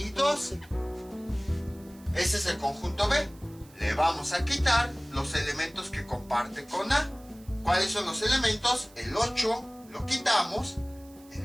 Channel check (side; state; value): right; noise; hiss, 26 dB below the sound